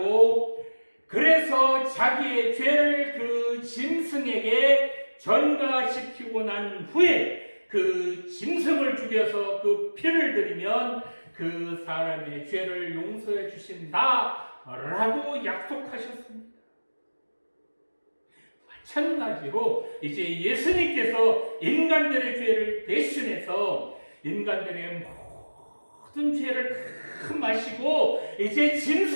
그래서 자기의 죄를 그 짐승에게 전가시키고 난 후에 그 짐승을 죽여서 그 피를 들이면 그 사람의 죄를 용서해 주신다라고 약속하셨습니다. 마찬가지로 이제 예수님께서 인간들의 죄를 대신해서 인간들의 모든 죄를 다 마시고 이제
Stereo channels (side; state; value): both; inverted; correlation -1.00